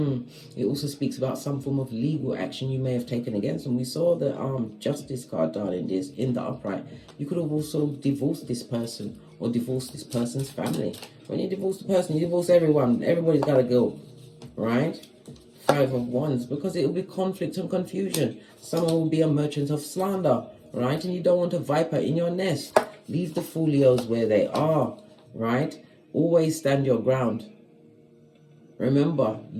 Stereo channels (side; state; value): both; identical; correlation 1.00